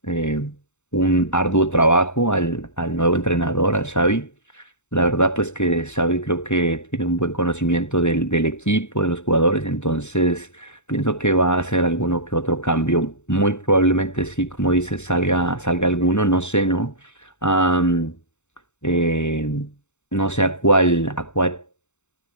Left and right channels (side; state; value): right; late; 0.83 ms